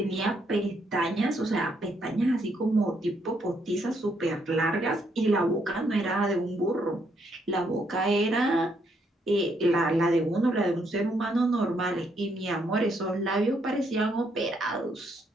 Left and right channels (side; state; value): both; normal; correlation 0.74